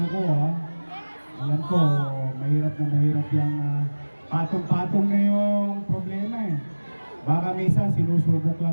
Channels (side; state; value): both; inverted; correlation -1.00